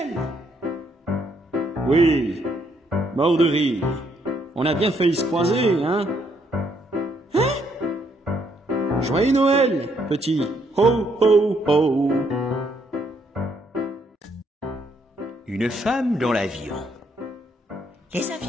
Oui, mort de rire. On a bien failli se croiser, hein? Joyeux Noël, petit. Ho, ho, ho. Une femme dans l'avion. Les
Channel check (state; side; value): normal; both; correlation 0.72